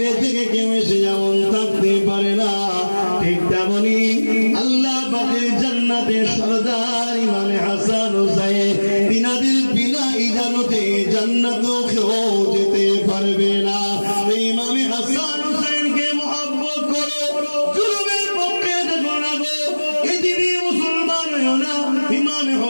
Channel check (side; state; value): both; inverted; correlation -1.00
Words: থেকে কেউ এসে যেমন থাকতে পারে না, ঠিক তেমনি আল্লাহ পাকের জান্নাতের সরদার ইমামে হাসান হুসাইন তিনাদের বিনা ইজাজতে জান্নাতেও কেউ যেতে পারবে না। ইমামে হাসান হুসাইনকে মহব্বত করো, জুলুমের পক্ষে দেখো না গো, এদিকে মুসলমান হও না। ইমামে